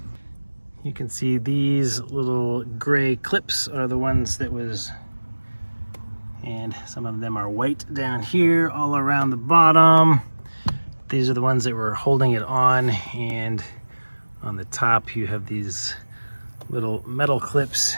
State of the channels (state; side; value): inverted; both; correlation -1.00